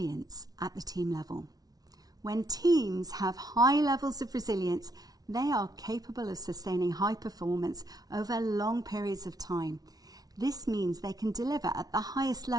at the team level. When teams have high levels of resilience, they are capable of sustaining high performance over long periods of time. This means they can deliver at the highest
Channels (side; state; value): left; late; 0.19 ms